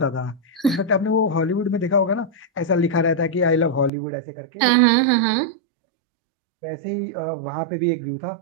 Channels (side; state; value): left; drops out; at 3.9 s